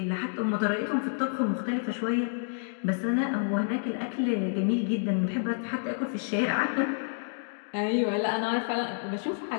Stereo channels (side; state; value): right; silent; digital silence